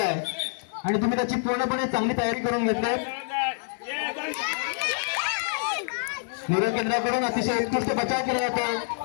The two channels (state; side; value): silent; right; 60 dB below the other